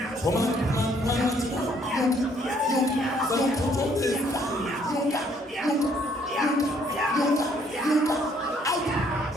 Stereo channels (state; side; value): normal; both; correlation 0.65